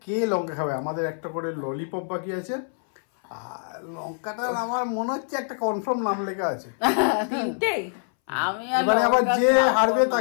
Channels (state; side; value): silent; right; 61 dB below the other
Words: কে লঙ্কা খাবে, আমাদের একটা করে ললিপপ বাকি আছে। আর লঙ্কাটা আমার মনে হচ্ছে একটা কনফার্ম নাম লেখা আছে। 3টেই? আমি আর এবারে আবার লঙ্কা যে খাবো হারবে না।